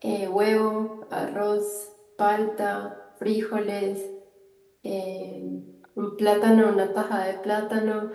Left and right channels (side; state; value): both; identical; correlation 1.00